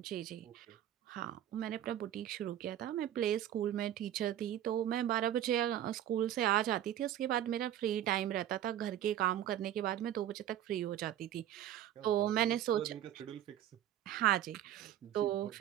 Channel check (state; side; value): quieter; left; 11.7 dB